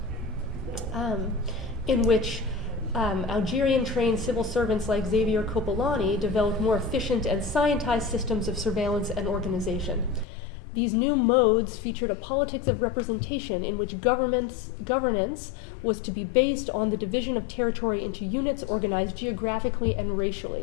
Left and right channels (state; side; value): drops out; right; at 10.2 s